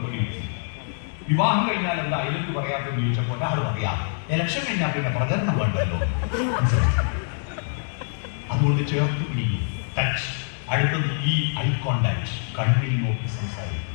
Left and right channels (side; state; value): right; silent; digital silence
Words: കിട്ടി. വിവാഹം കഴിഞ്ഞാൽ എന്താ ഐലക്യു പറയാത്തെന്ന് ചോദിച്ചപ്പോൾ ഒരാൾ പറയാം, ഇലക്ഷൻ കഴിഞ്ഞാൽ പിന്നെ പ്രചരണം വേണ്ടല്ലോ. അതുകൊണ്ട് ചേർത്ത് പിടിക്കും. ടച്ച്. അടുത്തത് ഈ ഐ കോണ്ടാക്ട്, കണ്ണിൽ നോക്കി സംസാരിക്കും.